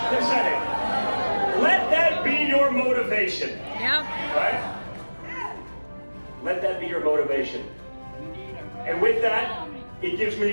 the Senate. Let that be your motivation. Yep. Right? Let that be your motivation. And with that, it gives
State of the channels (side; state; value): both; inverted; correlation -1.00